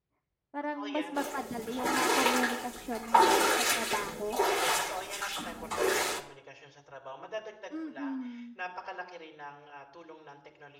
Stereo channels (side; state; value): both; identical; correlation 1.00